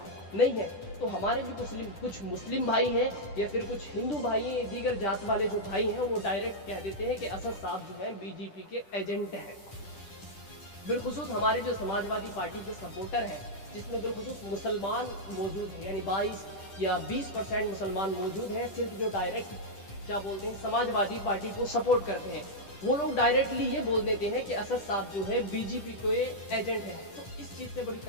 नहीं है। तो हमारे भी कुछ मुस्लिम भाई हैं, या फिर कुछ हिंदू भाई हैं, दीगर जात वाले जो भाई हैं, वो डायरेक्ट कह देते हैं कि असद साहब जो है बीजेपी के एजेंट हैं। बिलखुसूस हमारे जो समाजवादी पार्टी के सपोर्टर हैं, जिसमें बिलखुसूस मुसलमान मौजूद हैं, यानी 22 या 20% मुसलमान मौजूद हैं, सिर्फ जो डायरेक्ट क्या बोलते हैं समाजवादी पार्टी को सपोर्ट करते हैं, वो लोग डायरेक्टली ये बोल देते हैं कि असद साहब जो है बीजेपी के एजेंट हैं। तो इस चीज़ से बड़ी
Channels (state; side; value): late; right; 10 ms